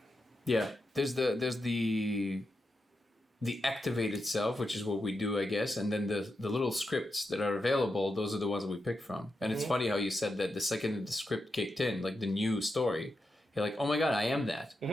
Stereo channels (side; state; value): both; normal; correlation 0.87